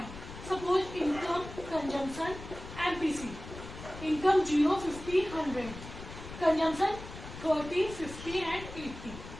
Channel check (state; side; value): noise; left; rumble, 12 dB below the sound